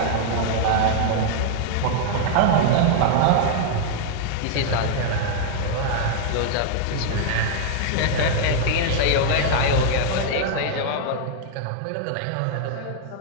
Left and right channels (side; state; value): both; different; correlation -0.01